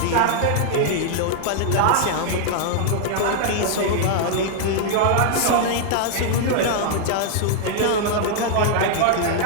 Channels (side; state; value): both; different; correlation -0.01